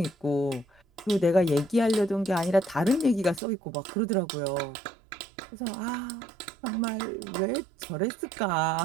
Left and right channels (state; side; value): drops out; left; at 3.4 s